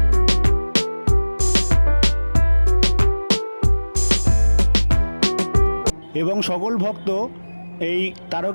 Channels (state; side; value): inverted; both; correlation -1.00